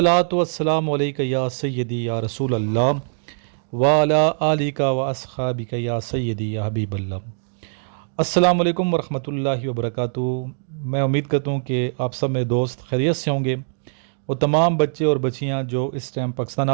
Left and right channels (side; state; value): left; silent; digital silence